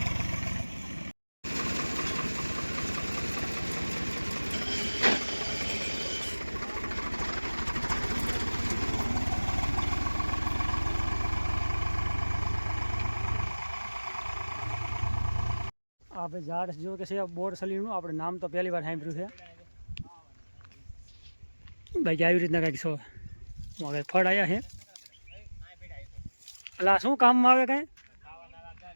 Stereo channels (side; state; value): both; inverted; correlation -1.00